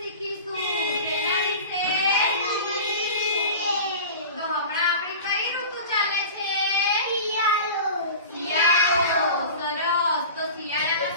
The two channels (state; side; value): inverted; both; correlation -0.35